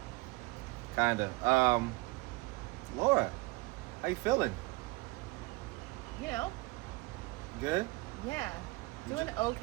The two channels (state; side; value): quieter; left; 22.4 dB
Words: Kinda. Laura, how you feeling? You know, Good? yeah, doing